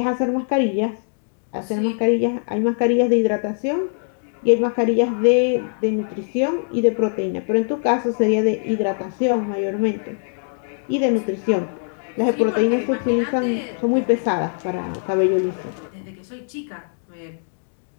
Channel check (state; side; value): silent; right; digital silence